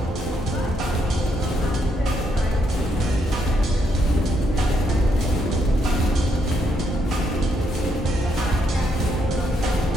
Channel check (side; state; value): both; normal; correlation 0.76